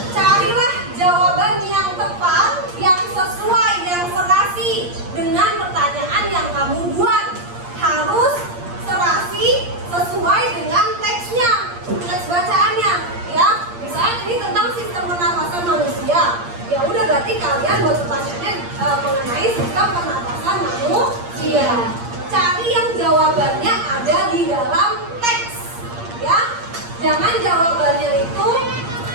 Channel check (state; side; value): late; left; 8.6 ms